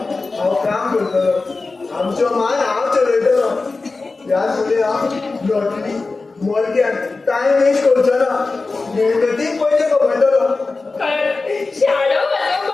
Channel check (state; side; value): quieter; right; 3.7 dB